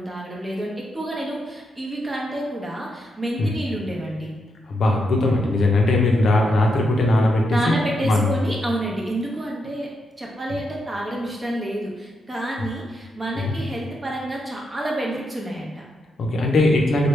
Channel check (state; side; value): normal; both; correlation 0.82